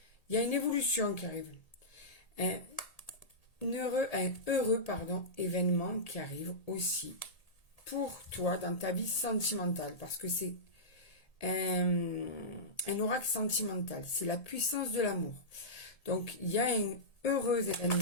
Il y a une évolution qui arrive. Un heureux événement qui arrive aussi pour toi dans ta vie sentimentale. Parce que c'est un oracle sentimental. C'est la puissance de l'amour. Donc, il y a un heureux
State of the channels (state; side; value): late; right; 1.8 ms